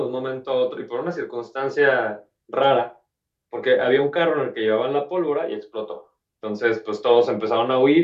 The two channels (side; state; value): both; identical; correlation 1.00